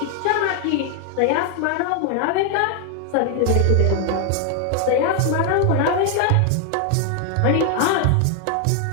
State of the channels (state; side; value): different; both; correlation 0.00